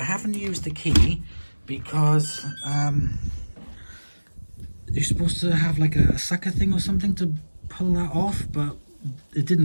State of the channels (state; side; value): inverted; both; correlation -1.00